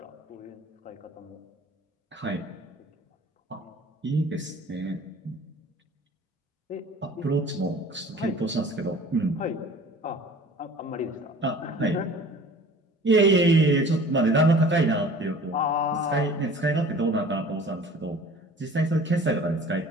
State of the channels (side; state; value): both; normal; correlation 0.47